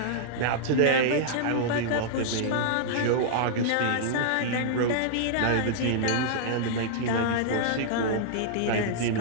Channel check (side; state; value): both; different; correlation -0.01